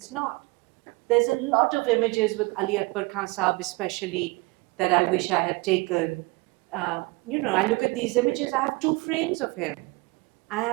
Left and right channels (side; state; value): left; quieter; 25.0 dB